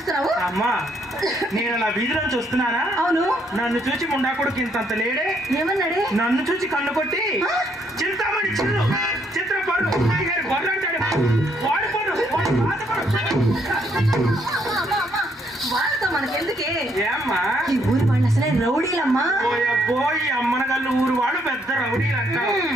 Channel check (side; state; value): both; normal; correlation 0.71